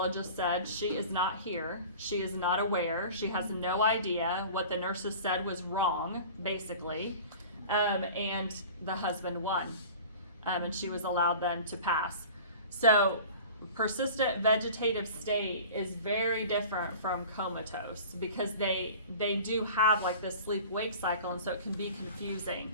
said she is not here. She is not aware. She has no idea. What the nurses said was wrong, basically. And the husband won. And she was allowed then to pass. So persistent vegetative state is very different from comatose because they do have like this sleep-wake cycle, and so it can be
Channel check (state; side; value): inverted; both; correlation -0.40